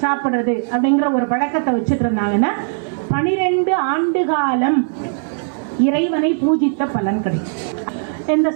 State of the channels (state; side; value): silent; left; 57 dB below the other